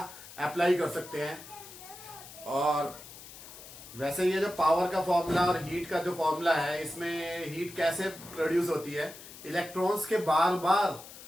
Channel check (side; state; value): left; noise; hiss, 16 dB below the sound